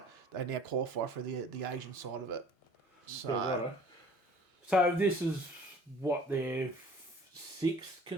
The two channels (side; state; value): both; normal; correlation 0.51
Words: They now qualify for the Asian side of it. So this is what their 6th